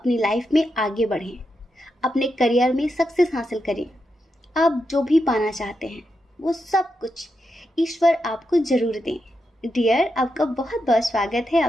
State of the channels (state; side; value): normal; both; correlation 0.85